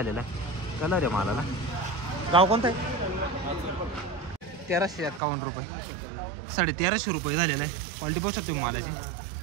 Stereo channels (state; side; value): drops out; left; at 5.2 s